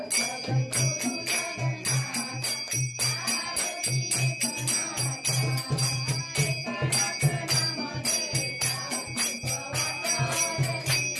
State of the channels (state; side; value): identical; both; correlation 1.00